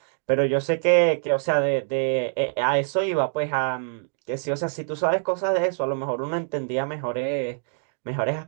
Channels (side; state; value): left; silent; digital silence